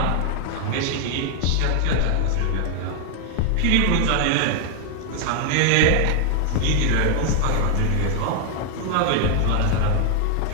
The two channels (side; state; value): both; different; correlation 0.00